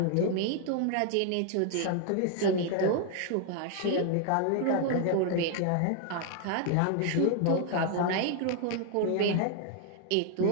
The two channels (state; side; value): different; both; correlation 0.00